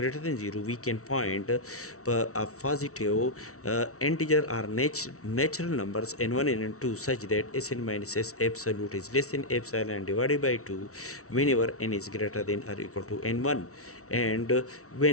than 0, we can find a positive integer or natural numbers n1 and n2 such that Sn minus S absolute is less than epsilon divided by 2 whenever n is greater than or equal to n1. And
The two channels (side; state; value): right; late; 0.64 ms